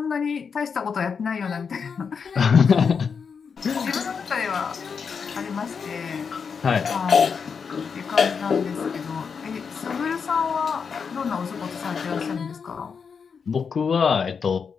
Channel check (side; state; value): right; quieter; 6.0 dB